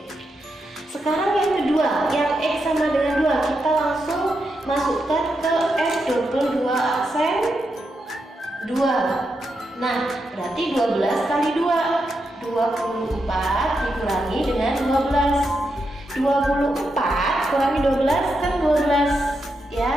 Sekarang yang kedua, yang X sama dengan 2, kita langsung masukkan ke F22 aksen 2. Nah, berarti 12 kali 2, 24 dikurangi dengan 12. 24 kurangi 12 kan 12,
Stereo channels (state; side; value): normal; both; correlation 0.85